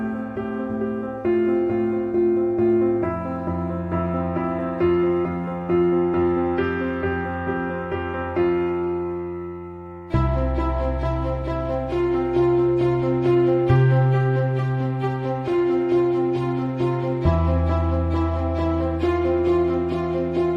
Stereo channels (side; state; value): both; identical; correlation 1.00